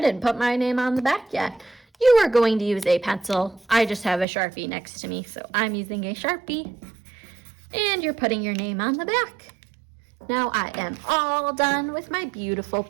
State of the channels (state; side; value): drops out; left; at 4.2 s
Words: didn't put my name on the back yet. You are going to use a pencil. I just have a Sharpie next to me, so I'm using a Sharpie. And you're putting your name on the back. Now I am all done with my beautiful